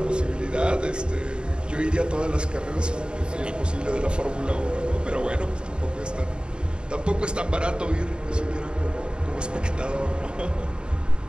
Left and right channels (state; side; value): late; left; 0.051 ms